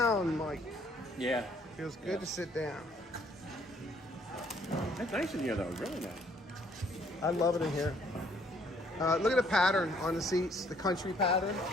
Mike. Yeah. Feels good to sit down. That's nice in here, though. Really nice. I love it in here. Look at the pattern on the seats, the country pattern.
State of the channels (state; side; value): normal; both; correlation 0.64